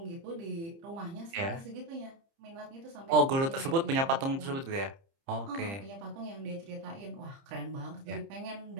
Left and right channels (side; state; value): left; late; 30 ms